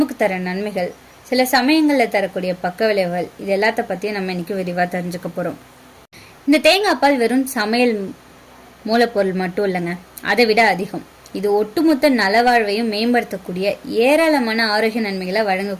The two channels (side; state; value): both; identical; correlation 1.00